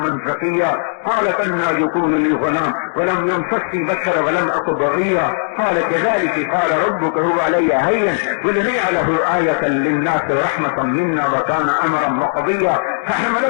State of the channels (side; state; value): right; silent; digital silence